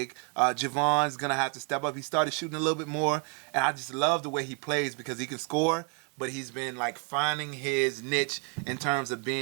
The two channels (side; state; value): left; quieter; 37.8 dB